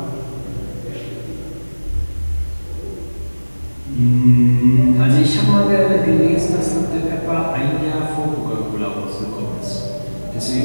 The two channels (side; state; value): both; inverted; correlation -1.00